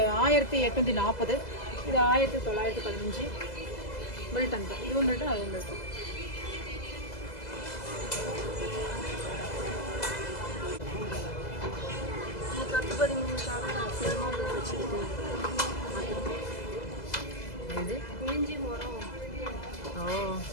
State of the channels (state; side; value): late; right; 2.0 ms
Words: 1840. இது 1915 மில்டன் தான். இதுவும் மில்டன் அதுவும் மில்டன். இது இஞ்சி மரம். ஓ